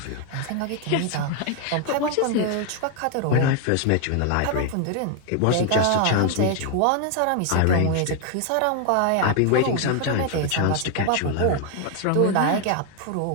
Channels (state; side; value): different; both; correlation 0.00